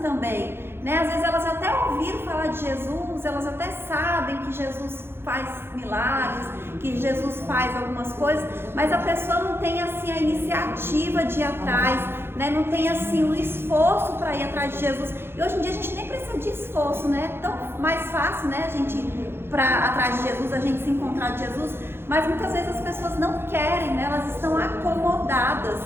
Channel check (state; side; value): late; left; 0.11 ms